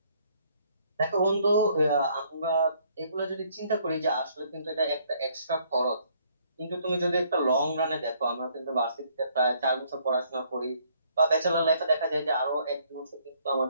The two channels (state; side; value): inverted; both; correlation -0.65